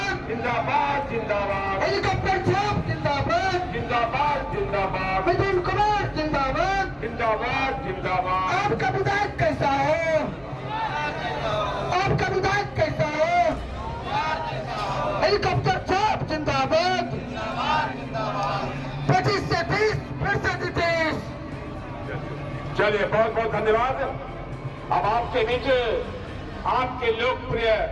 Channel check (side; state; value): both; identical; correlation 1.00